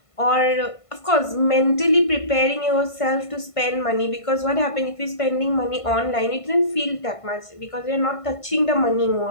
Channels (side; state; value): right; late; 1.5 ms